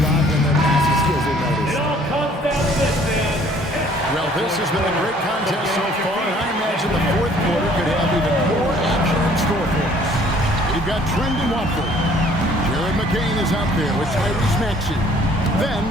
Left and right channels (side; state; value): both; normal; correlation 0.57